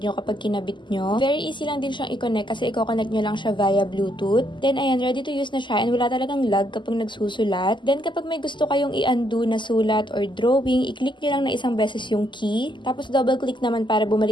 nyo kapag kinabit nyo. Very easy lang din siyang i-connect kasi i-connect nyo lang siya via Bluetooth. Then ayan, ready to use na siya and wala talagang lag kapag nagsusulat. Then kapag may gusto kayong i-undo na sulat or drawing, i-click nyo lang na isang beses yung key. Tapos double click naman para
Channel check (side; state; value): right; late; 0.23 ms